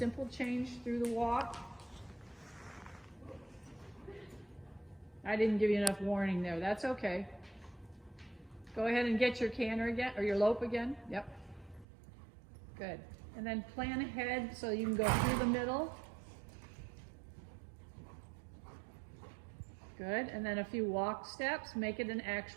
change through the walk. I didn't give you enough warning there. That's okay. Go ahead and get your canter again, or your lope again. Yep. Good. And then plan ahead so you can go through the middle. Good. And then a few walk steps. Make it an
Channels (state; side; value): drops out; left; at 11.9 s